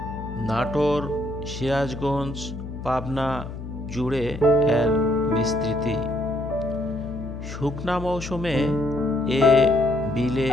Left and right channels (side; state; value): left; noise; hum, 9 dB below the sound